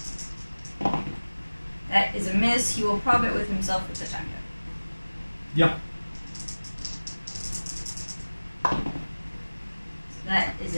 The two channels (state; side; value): inverted; both; correlation -1.00